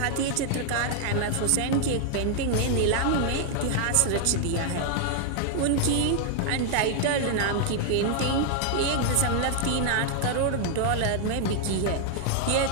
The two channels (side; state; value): both; different; correlation 0.00